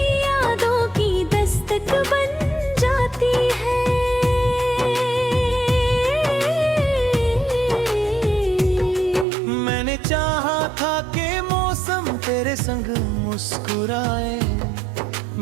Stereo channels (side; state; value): left; drops out; at 9.2 s